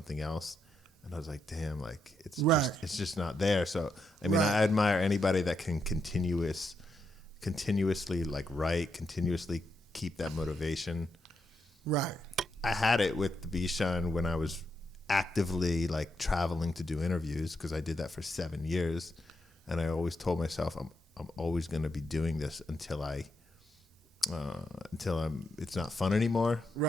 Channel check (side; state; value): both; normal; correlation 0.82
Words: else. And I was like, damn, like it's just not there. So I mean, I admire anybody that can continuously like write, continuously keep that motivation. Right. I had it with TheBeeShine when I was actively like traveling to do interviews, because I did that for 7 years, and I always told myself I'm always going to be doing this until it's not fun anymore.